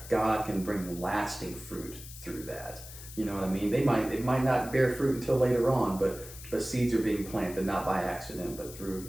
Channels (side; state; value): left; noise; hiss, 14 dB below the sound